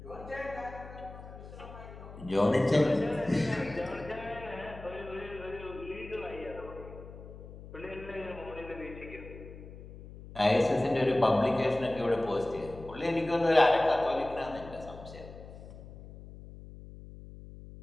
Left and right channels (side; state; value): left; noise; hum, 15 dB below the sound